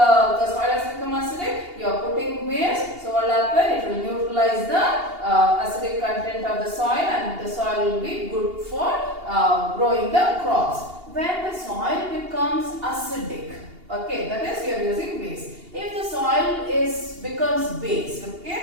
soil has become acidic. You are putting base. So what will happen? It will neutralize the acidic content of the soil, and the soil will be good for growing the crops. When the soil becomes acidic, okay, that is you are using base. If the soil becomes base,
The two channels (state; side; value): late; left; 2.8 ms